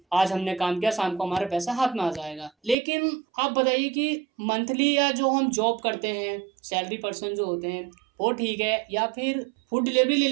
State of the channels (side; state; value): left; drops out; at 2.8 s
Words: आज हमने काम किया, शाम को हमारा पैसा हाथ में आ जाएगा। लेकिन आप बताइए कि मंथली या जो हम जॉब करते हैं, सैलरी पर्सन जो होते हैं, वो ठीक है या फिर फूड डिलीवरी ले